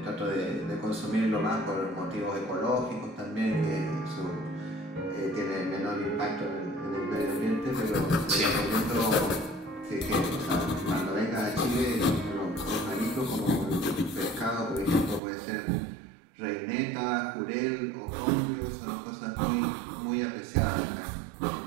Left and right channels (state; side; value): drops out; left; at 15.2 s